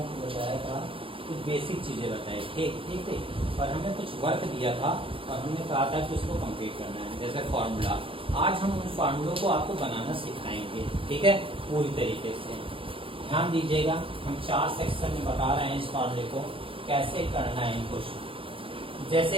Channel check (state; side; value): late; left; 0.26 ms